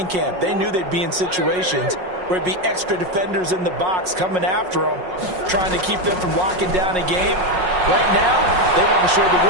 camp. They knew they'd be in situations where it'd be extra defenders in the box coming after them, trying to keep them from locking down a game. Right now, they want to show the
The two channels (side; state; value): left; late; 5.5 ms